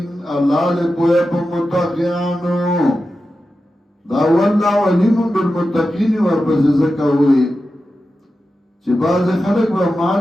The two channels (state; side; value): normal; both; correlation 0.92